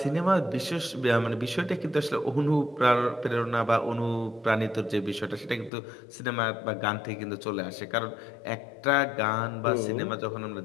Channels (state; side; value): drops out; right; at 5.7 s